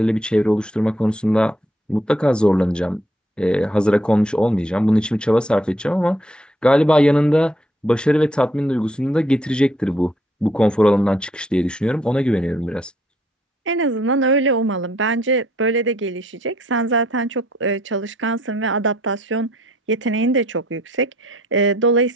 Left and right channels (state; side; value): normal; both; correlation 0.67